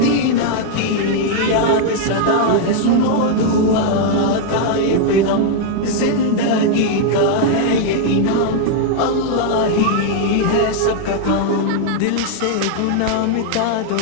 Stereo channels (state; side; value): different; both; correlation 0.00